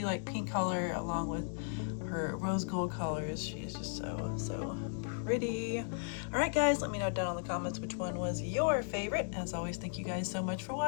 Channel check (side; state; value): right; silent; digital silence